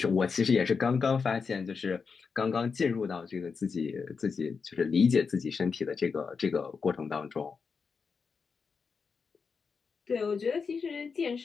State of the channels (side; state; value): right; quieter; 5.4 dB